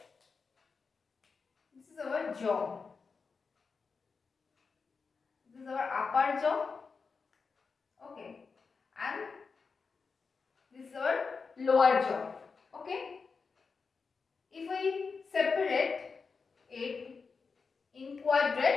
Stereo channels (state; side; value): quieter; right; 4.9 dB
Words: this is our jaw. This is our upper jaw. Okay. And this is our lower jaw. Okay. If we separate it in